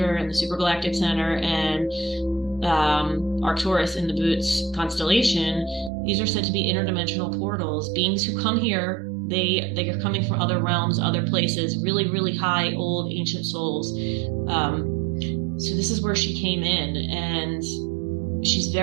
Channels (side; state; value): left; drops out; at 5.9 s